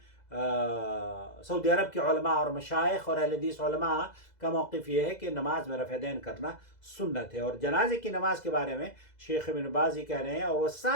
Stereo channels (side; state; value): right; late; 2.0 ms